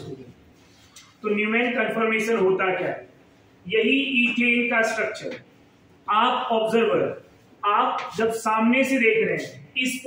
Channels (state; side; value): identical; both; correlation 1.00